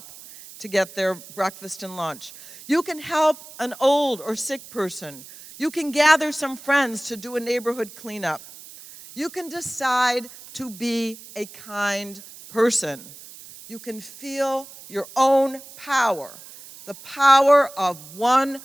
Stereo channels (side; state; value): right; noise; hiss, 18 dB below the sound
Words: to get their breakfast and lunch. You can help an old or sick person. You can gather some friends to do a neighborhood cleanup. You can decide to be a kind person. You can feel your own power. The power of one